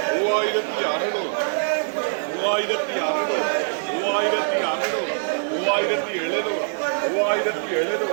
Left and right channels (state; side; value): silent; left; 63 dB below the other